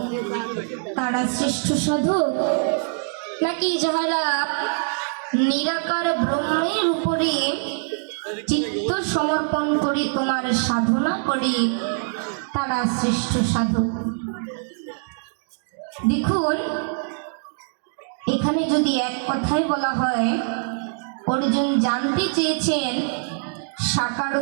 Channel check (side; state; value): left; silent; 63 dB below the other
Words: তারা শ্রেষ্ঠ সাধক, নাকি যাহারা নিরাকার ব্রহ্মের উপরে চিত্ত সমর্পণ করে তোমার সাধনা করে, তারা শ্রেষ্ঠ সাধক? দেখুন, এখানে যদি এক কথায় বলা হয়, অর্জুন জানতে চেয়েছেন সাকার